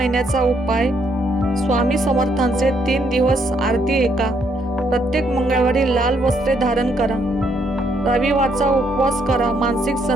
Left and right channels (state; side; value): normal; both; correlation 0.72